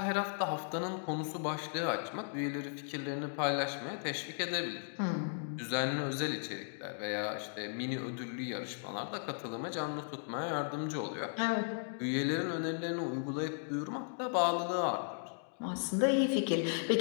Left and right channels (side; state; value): right; silent; digital silence